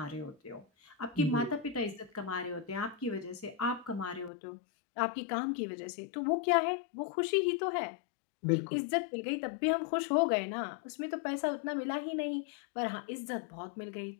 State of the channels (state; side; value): drops out; right; at 4.3 s